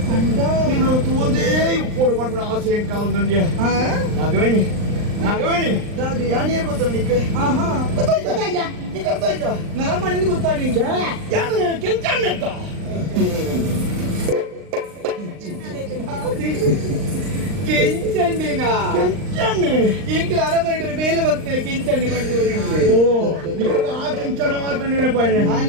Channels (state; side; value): late; left; 39 ms